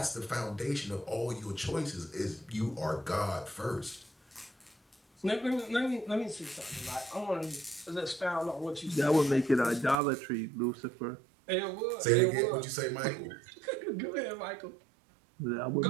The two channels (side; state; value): left; drops out; at 10.0 s